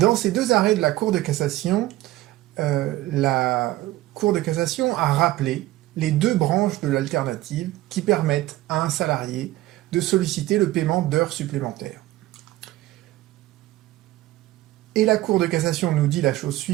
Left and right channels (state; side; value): quieter; left; 16.7 dB